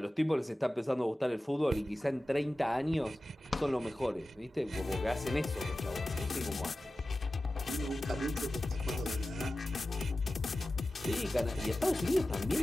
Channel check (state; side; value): normal; both; correlation 0.95